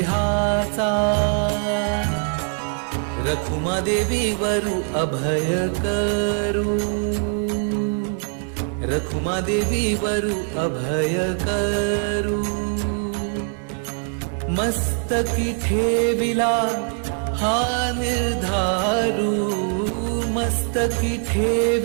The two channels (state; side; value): silent; left; 55 dB below the other